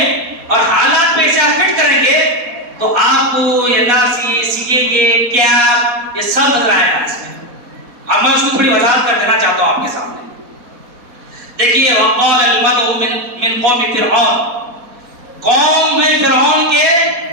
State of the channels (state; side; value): late; left; 4.2 ms